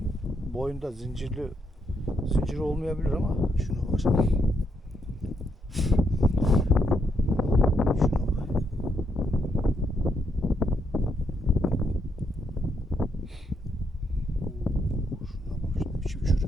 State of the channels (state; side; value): normal; both; correlation 0.77